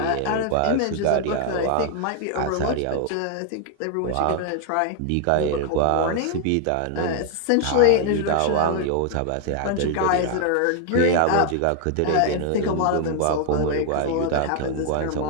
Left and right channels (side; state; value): both; different; correlation 0.00